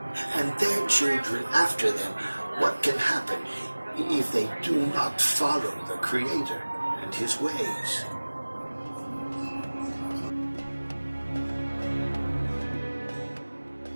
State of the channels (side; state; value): both; inverted; correlation -1.00